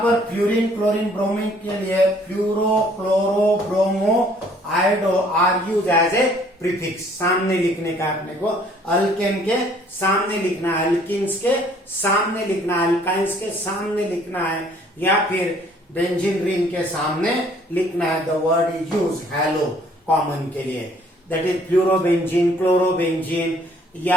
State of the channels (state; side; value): normal; both; correlation 0.59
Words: फ्लोरीन, क्लोरीन, ब्रोमीन के लिए fluoro, chloro, bromo, iodo are use as a prefix. सामने लिखने का अपने को, अल्केन के सामने लिखना है, अल्किन्स के सामने लिखना है, अल्काइंस के सामने लिखना है, या फिर बेंजीन रिंग के सामने लिखना है। The word is use hello common के लिए, दैट इज फ्लूरोबेंजीन, क्लोरोबेंजीन,